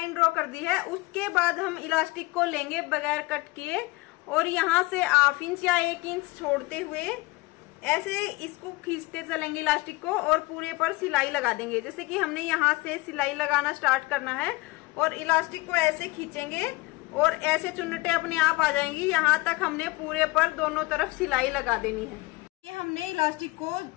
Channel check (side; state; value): right; quieter; 22.1 dB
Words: ड्रॉ कर दी है। उसके बाद हम इलास्टिक को लेंगे बगैर कट किए और यहाँ से 1/2 इंच या 1 इंच छोड़ते हुए ऐसे इसको खींचते चलेंगे इलास्टिक को और पूरे पर सिलाई लगा देंगे। जैसे कि हमने यहाँ से सिलाई लगाना स्टार्ट करना है और इलास्टिक को ऐसे खींचेंगे और ऐसे चुन्नटे अपने आप आ जाएंगी। यहाँ तक हमने पूरे पर दोनों तरफ सिलाई लगा देनी है। ये हमने इलास्टिक को